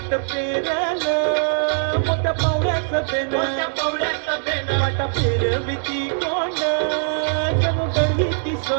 पेरलं मोठ्या पावड्याचं पेन, वाटा फिरविती कोण जणू दळवीती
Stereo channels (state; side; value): silent; left; digital silence